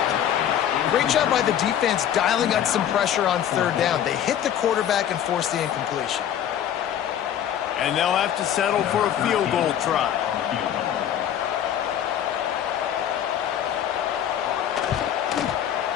Great job by the defense dialing up some pressure on third down. They hit the quarterback and forced the incompletion. And they'll have to settle for a field goal try.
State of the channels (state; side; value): quieter; right; 10.1 dB